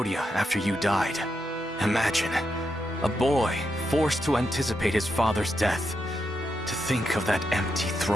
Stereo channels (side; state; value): both; normal; correlation 0.84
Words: after you died. Imagine, a boy forced to anticipate his father's death. To think of that empty